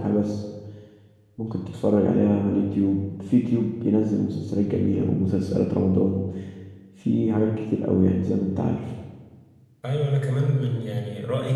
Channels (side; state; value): both; identical; correlation 1.00